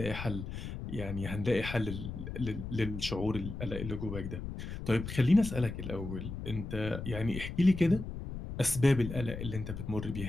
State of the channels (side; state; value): left; noise; rumble, 7 dB below the sound